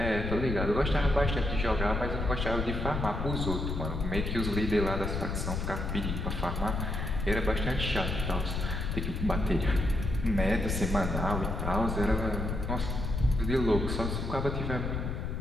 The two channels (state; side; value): noise; left; rumble, 2 dB below the sound